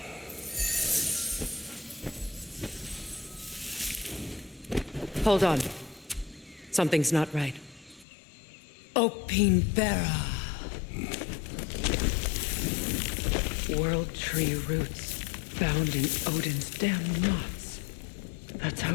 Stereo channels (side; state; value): right; drops out; at 8.1 s